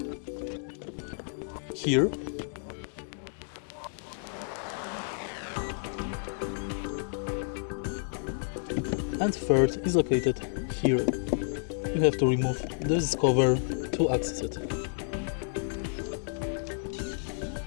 here, and third is located here. You have to remove this cover to access it.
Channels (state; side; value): silent; right; 57 dB below the other